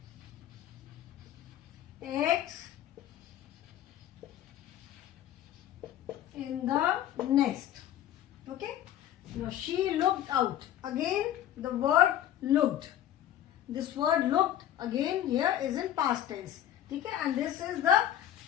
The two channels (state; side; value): quieter; right; 11.6 dB